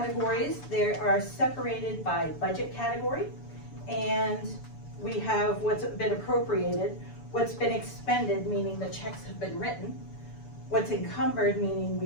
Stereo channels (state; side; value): late; right; 7.0 ms